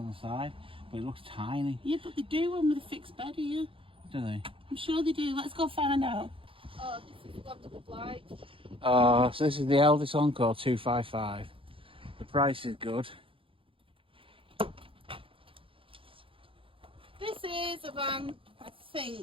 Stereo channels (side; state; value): left; late; 0.26 ms